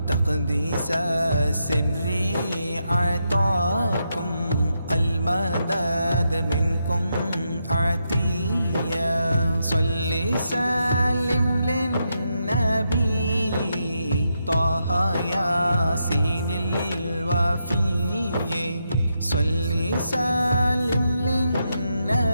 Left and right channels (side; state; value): both; inverted; correlation -0.83